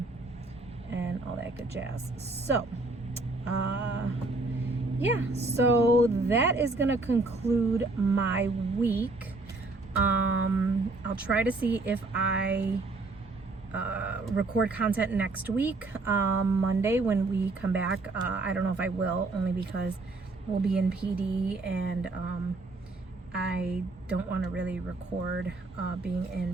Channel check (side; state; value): left; quieter; 3.3 dB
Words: and all that good jazz. So yeah, so that is gonna conclude my week. I'll try to see if I record content next week, Monday when we come back. I don't know if I will, only because we'll be in PD, and I don't want to really record being in